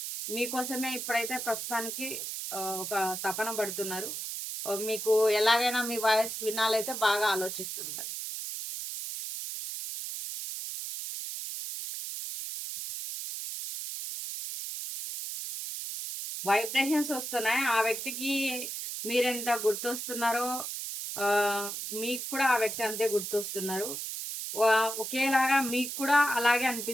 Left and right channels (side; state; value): right; noise; hiss, 5 dB below the sound